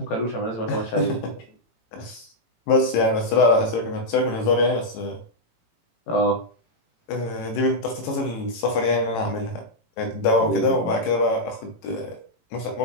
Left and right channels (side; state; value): right; late; 18 ms